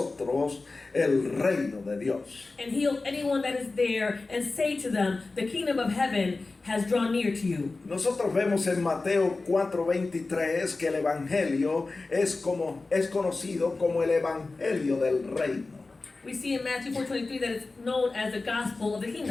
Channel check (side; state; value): right; quieter; 3.6 dB